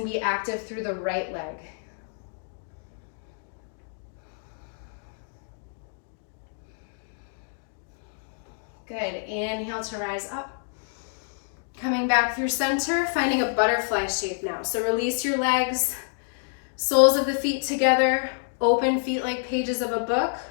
be active through the right leg. Good, inhale to rise up. Coming back through center, finding a butterfly shape now. So release your legs, soles of the feet together, open feet like pages of a book.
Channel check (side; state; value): right; silent; digital silence